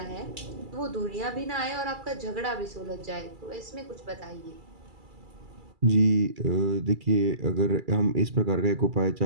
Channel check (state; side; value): late; left; 2.3 ms